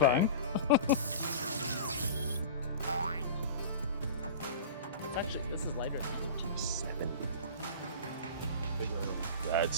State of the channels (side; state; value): both; inverted; correlation -0.33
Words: Actually, this is lighter than 270. That's